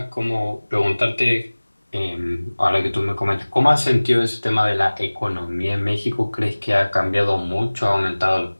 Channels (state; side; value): inverted; both; correlation -1.00